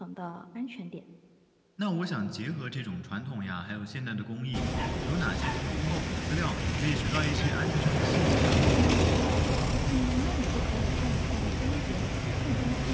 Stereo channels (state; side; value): identical; both; correlation 1.00